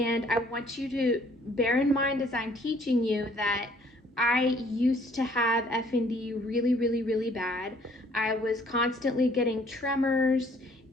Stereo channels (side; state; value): both; normal; correlation 0.60